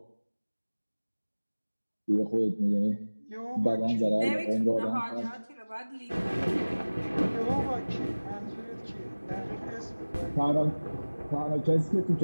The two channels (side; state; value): both; inverted; correlation -1.00